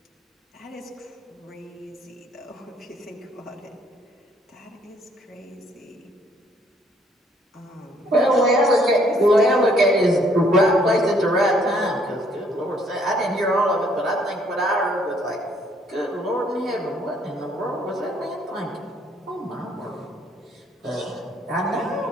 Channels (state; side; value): normal; both; correlation 0.65